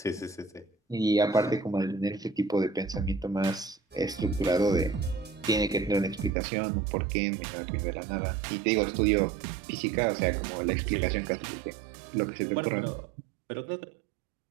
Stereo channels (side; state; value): left; drops out; at 6.3 s